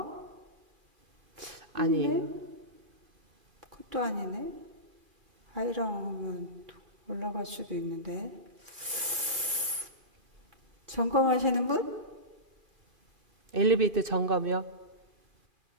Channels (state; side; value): late; left; 2.3 ms